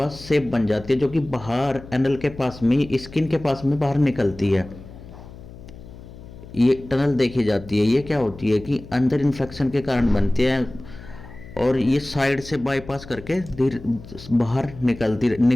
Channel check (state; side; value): noise; left; hum, 17 dB below the sound